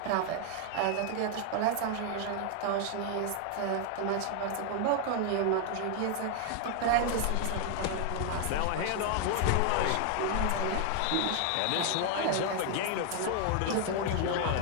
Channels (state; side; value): different; both; correlation 0.00